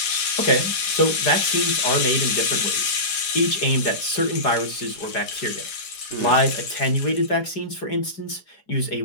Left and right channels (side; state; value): right; late; 4.9 ms